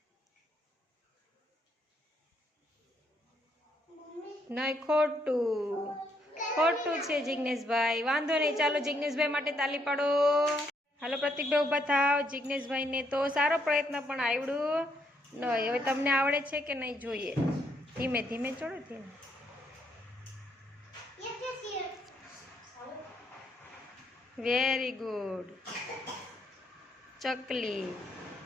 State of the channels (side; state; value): both; normal; correlation 0.73